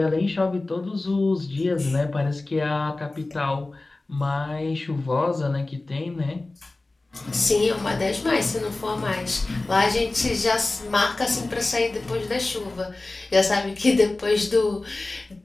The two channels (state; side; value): quieter; right; 3.1 dB